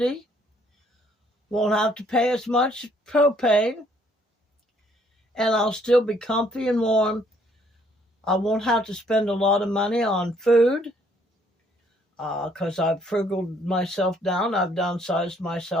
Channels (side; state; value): both; normal; correlation 0.65